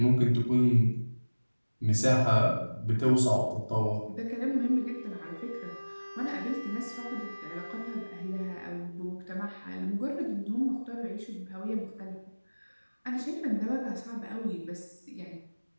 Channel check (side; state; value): both; inverted; correlation -1.00